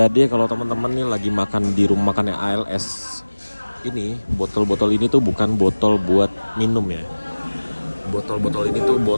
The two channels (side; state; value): both; inverted; correlation -1.00